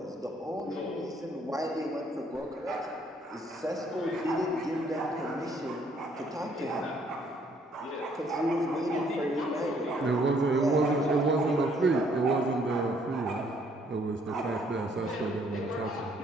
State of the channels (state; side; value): normal; both; correlation 0.65